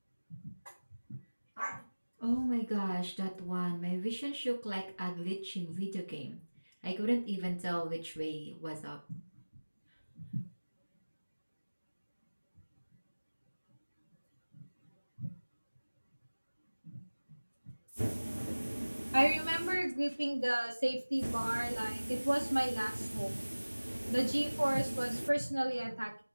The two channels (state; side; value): inverted; both; correlation -1.00